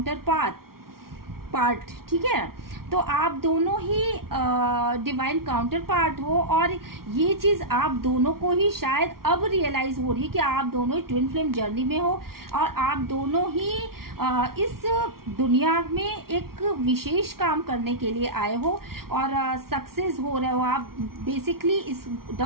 counterpart, ठीक है। तो आप दोनों ही डिवाइन काउंटर पार्ट हो और ये चीज़ आप दोनों को ही शायद अब रियलाइज हो रही है कि आप दोनों ही ट्विन फ्लेम जर्नी में हो और आप दोनों ही इस दुनिया में एक विशेष काम करने के लिए आए हो और सक्सेस हो रहे हो आप। बेसिकली इस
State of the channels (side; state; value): left; late; 0.94 ms